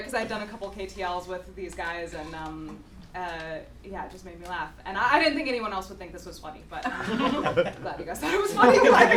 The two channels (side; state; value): both; identical; correlation 1.00